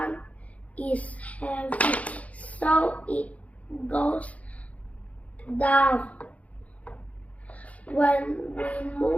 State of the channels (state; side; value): late; right; 0.068 ms